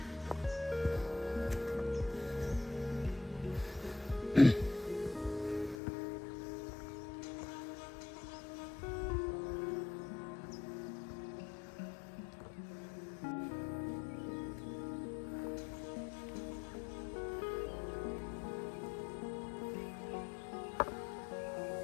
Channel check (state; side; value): drops out; right; at 5.8 s